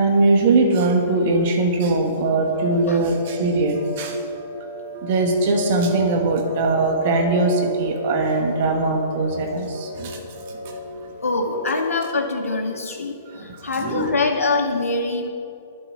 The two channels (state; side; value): inverted; both; correlation -0.45